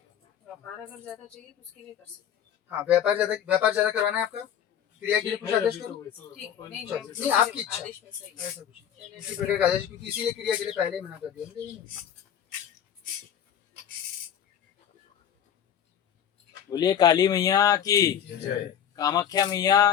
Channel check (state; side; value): quieter; right; 9.4 dB